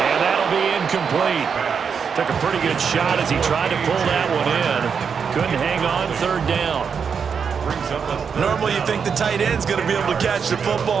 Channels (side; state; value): left; quieter; 6.4 dB